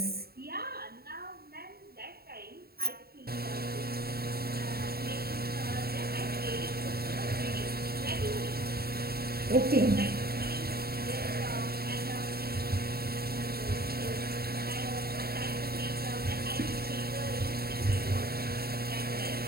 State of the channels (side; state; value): left; late; 0.45 ms